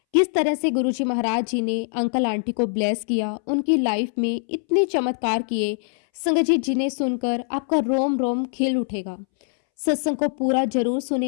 किस तरह से गुरु जी महाराज जी ने अंकल आंटी को ब्लेस किया, उनकी लाइफ में इतने चमत्कार किए, संगत जी जिन्हें सुनकर आपका रोम रोम खिल उठेगा। सत्संग को पूरा जरूर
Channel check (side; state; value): right; silent; 63 dB below the other